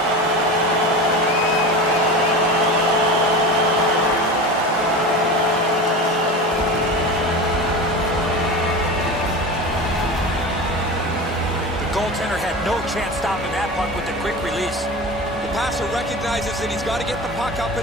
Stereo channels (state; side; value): normal; both; correlation 0.29